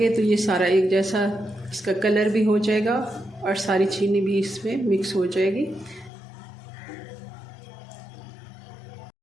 तो ये सारा एक जैसा इसका कलर भी हो जाएगा और सारी चीनी भी इसमें मिक्स हो जाएगी।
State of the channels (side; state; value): right; drops out; at 6.1 s